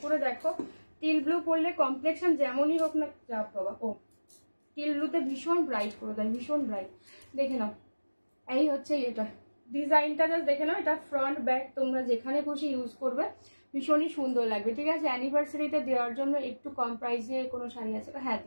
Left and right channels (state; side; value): inverted; both; correlation -1.00